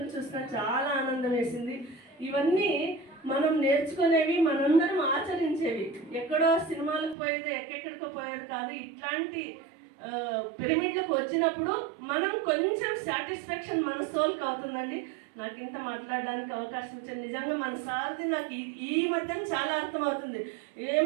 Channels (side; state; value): left; drops out; at 7.2 s